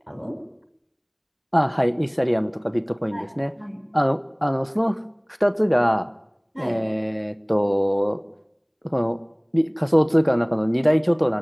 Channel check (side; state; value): both; identical; correlation 1.00